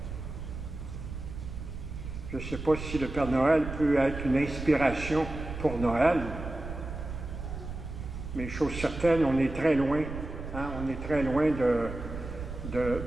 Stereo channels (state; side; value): noise; right; rumble, 8 dB below the sound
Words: Je ne sais pas si le Père Noël peut être une inspiration pour Noël, mais chose certaine, on est très loin, on est très loin